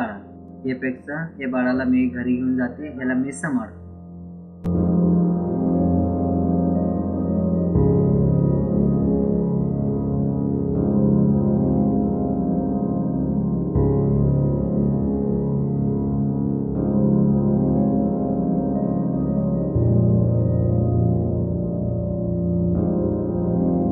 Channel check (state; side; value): identical; both; correlation 1.00